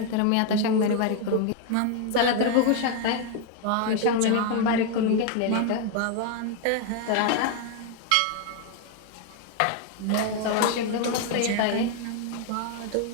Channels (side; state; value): both; different; correlation 0.01